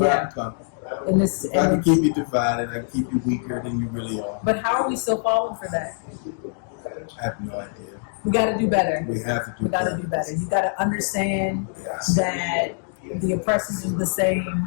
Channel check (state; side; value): silent; right; digital silence